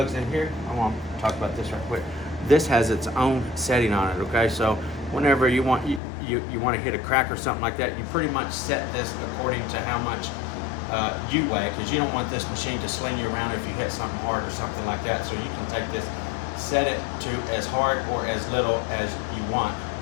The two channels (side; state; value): right; drops out; at 6.0 s